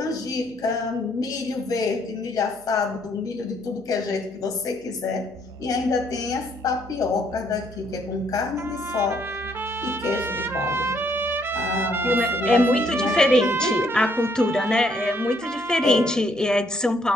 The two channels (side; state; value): right; noise; hum, 28 dB below the sound